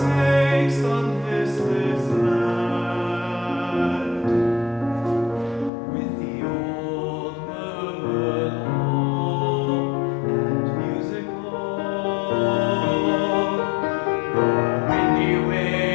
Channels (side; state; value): right; drops out; at 5.7 s